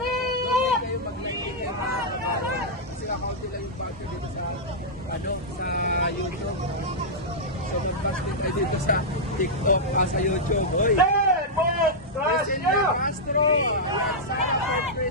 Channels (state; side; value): normal; both; correlation -0.08